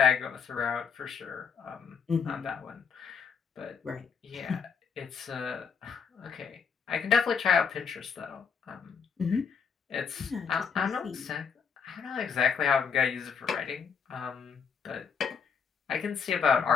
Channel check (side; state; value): right; quieter; 6.3 dB